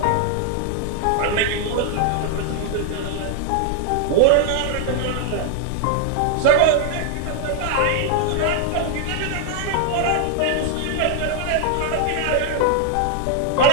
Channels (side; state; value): both; different; correlation 0.00